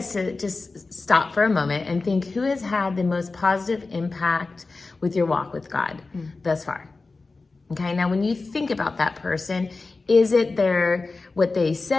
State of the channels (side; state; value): right; quieter; 3.7 dB